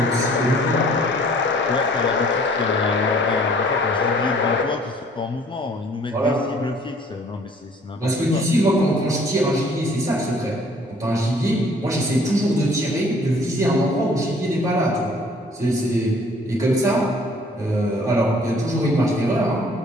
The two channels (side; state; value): both; normal; correlation 0.56